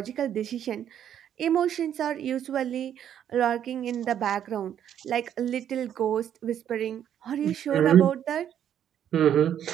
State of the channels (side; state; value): left; quieter; 9.8 dB